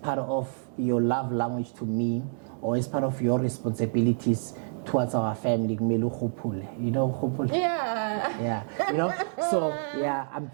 of your love language to me, or as part of your responsibilities towards our family. You know, you know. So I'm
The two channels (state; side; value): silent; left; digital silence